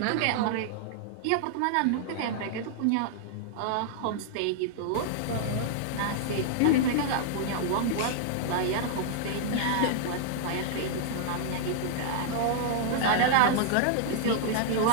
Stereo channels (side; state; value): both; different; correlation -0.01